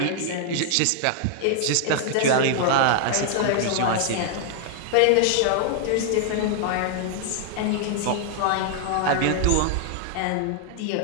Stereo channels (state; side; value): different; both; correlation -0.01